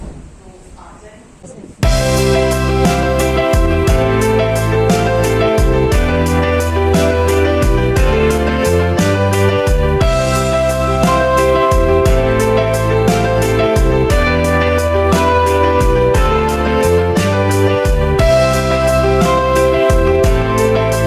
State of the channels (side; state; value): both; identical; correlation 1.00